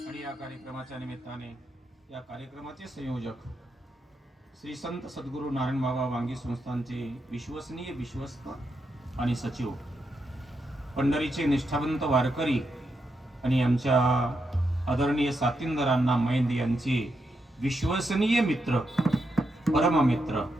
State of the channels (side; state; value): both; normal; correlation 0.84